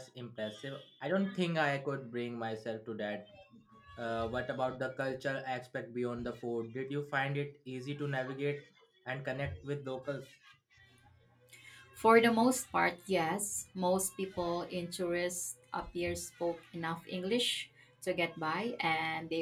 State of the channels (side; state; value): both; identical; correlation 1.00